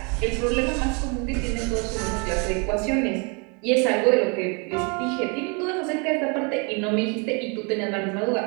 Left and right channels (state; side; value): quieter; left; 33.2 dB